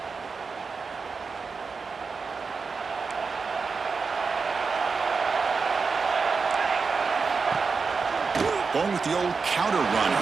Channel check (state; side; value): quieter; left; 4.8 dB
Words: Going with the old counter run